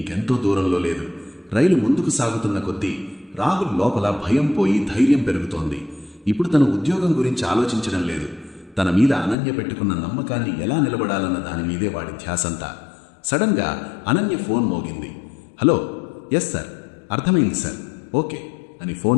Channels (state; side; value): drops out; right; at 9.3 s